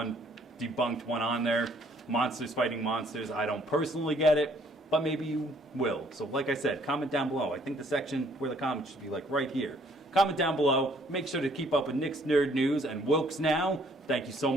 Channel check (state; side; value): normal; both; correlation 0.63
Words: debunked one on there. Monsters fighting monsters. I don't personally get it, but maybe you will. So like I said, comment down below. I think the section where the comments should be like right here. Comment down below. Make sure to keep up with Nick's Nerd News and Wilkes Now. Thank you so